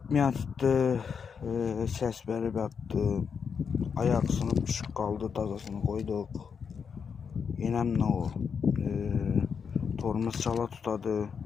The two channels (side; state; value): right; quieter; 6.4 dB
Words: tuttu, ses verip yattı. Ayak sınıp düşüp kaldı, tazasını koyduk. Yenem ne o? Torumuz çala tutadı.